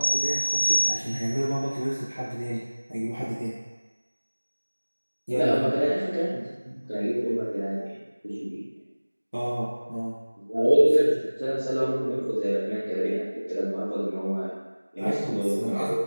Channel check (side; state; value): both; inverted; correlation -1.00